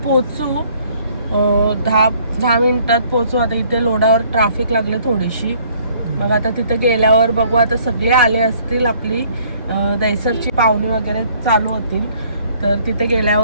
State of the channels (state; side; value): inverted; both; correlation -0.60